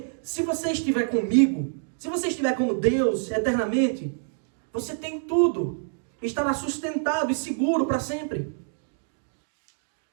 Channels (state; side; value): silent; left; digital silence